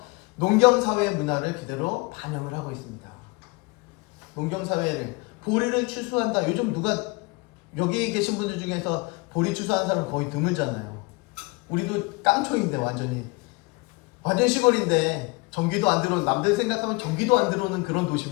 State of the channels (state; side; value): quieter; right; 26.5 dB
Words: 농경사회의 문화를 그대로 반영을 하고 있습니다. 농경사회를 보리를 추수한다. 요즘 누가 여기 계신 분들 중에서 보리 추수하는 사람 거의 드물잖아요. 우리도 깡초인데 완전 시골인데 전기도 안 들어오는, 남들 생각하면 전기도 안 들어오는 그런